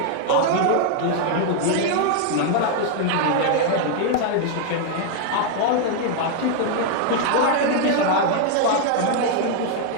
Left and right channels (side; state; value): both; different; correlation 0.00